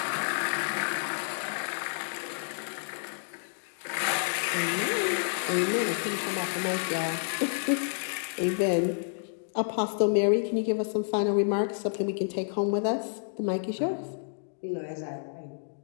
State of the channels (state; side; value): silent; right; digital silence